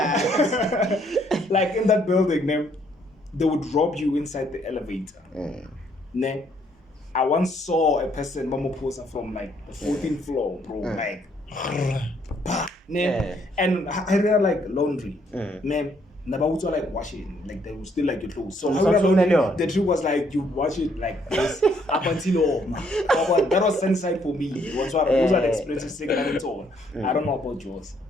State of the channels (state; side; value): normal; both; correlation 0.68